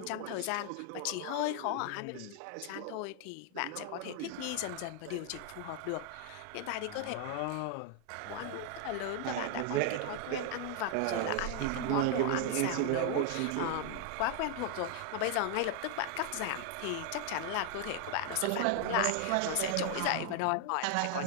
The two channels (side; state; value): both; different; correlation 0.00